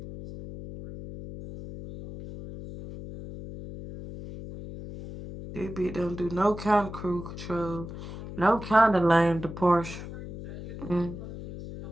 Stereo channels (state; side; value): noise; left; hum, 11 dB below the sound